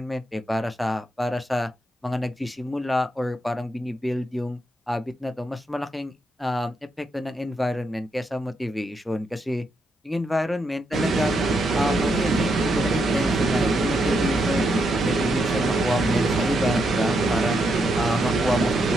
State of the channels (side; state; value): both; normal; correlation 0.80